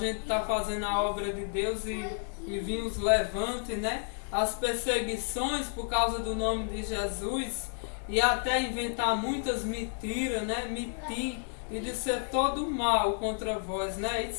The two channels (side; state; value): right; silent; 57 dB below the other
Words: tá fazendo a obra de Deus e vir os levantes, né? As perseguições por causa do nome de Jesus, e até inventar muitas mentiras, né? Mentir e dizer todo mal contra vós, né?